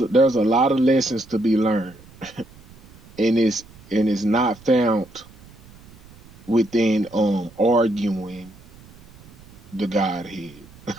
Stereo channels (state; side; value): noise; right; rumble, 23 dB below the sound